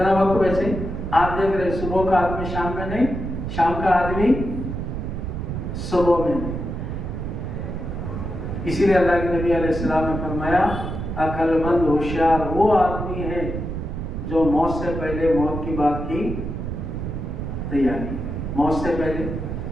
وقت بچے آپ دیکھ رہے, صبح کا آدمی شام میں نہیں, شام کا آدمی صبح میں نہیں. اسی لیے اللہ کے نبی علیہ السلام نے فرمایا عقل مند ہوشیار وہ آدمی ہے جو موت سے پہلے موت کی بات کی تیاری. موت سے پہلے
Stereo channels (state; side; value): noise; right; rumble, 5 dB below the sound